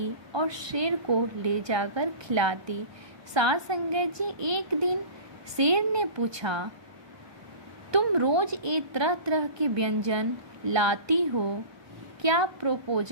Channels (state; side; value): late; left; 1.2 ms